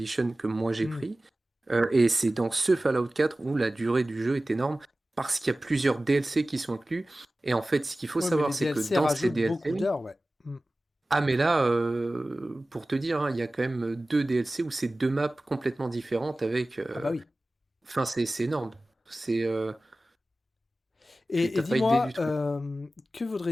que moi j'ai Hmm. pris. Et c'est dans ce Fallout 4 où la durée du jeu est énorme parce qu'il y a plusieurs DLC qui sont inclus. Et en fait, ce qu'il faut Ouais, mais les savoir, c'est que DLC dans ces rajoutent beaucoup DLC, d'heures, ouais. Hmm. ah mais là, pour te dire, hein, il y a quand même deux DLC où c'est deux maps complètement différentes avec. Ah bah oui. Enfin, c'est énorme. C'est, Et t'as pas idée dis-moi, du truc. que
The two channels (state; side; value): normal; both; correlation 0.97